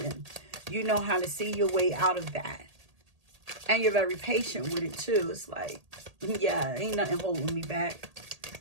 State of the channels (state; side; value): late; left; 1.8 ms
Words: you know how to see your way out of that. And you're very patient with it too. It's like, yeah, ain't nothing holding me back.